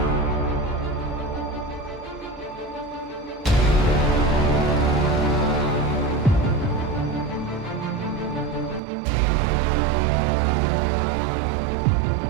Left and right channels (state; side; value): drops out; left; at 8.8 s